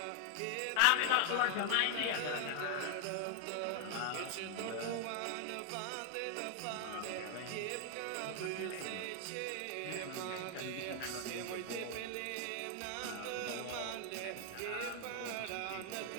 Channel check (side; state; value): both; different; correlation 0.00